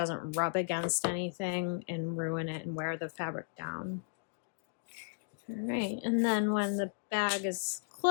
rub against anything and ruin it and wear the fabric down. All right, and then when the bag is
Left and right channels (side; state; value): right; silent; digital silence